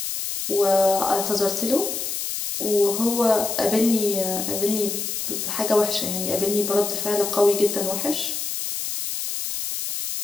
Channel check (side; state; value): left; noise; hiss, 4 dB below the sound